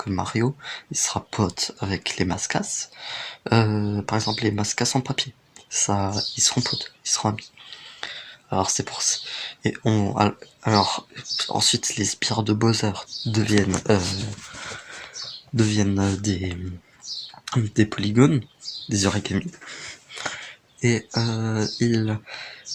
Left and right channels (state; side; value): identical; both; correlation 1.00